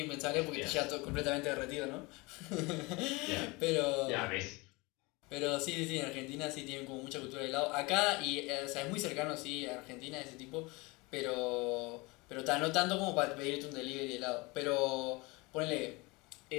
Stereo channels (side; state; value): right; quieter; 25.0 dB